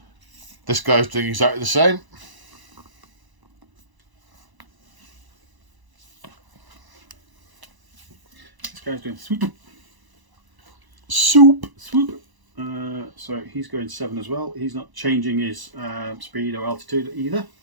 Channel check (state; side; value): late; left; 1.0 ms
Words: This guy's doing exactly the same. This guy's doing swoop. Soup. Swoop. So he's going 7 as well. He's not changing his speed or altitude either.